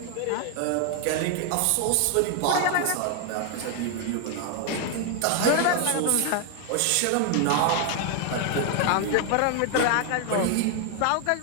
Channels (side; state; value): both; different; correlation 0.00